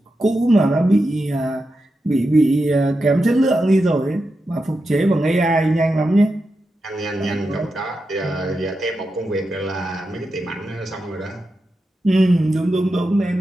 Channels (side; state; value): both; normal; correlation 0.89